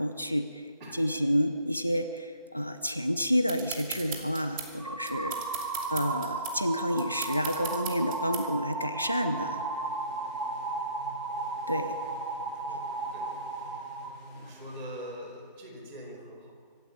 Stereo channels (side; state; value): both; inverted; correlation -0.61